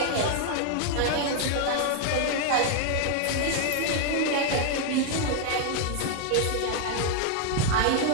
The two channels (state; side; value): different; both; correlation 0.00